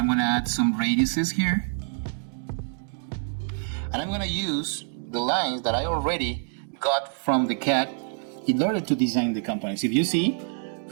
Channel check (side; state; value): left; silent; 61 dB below the other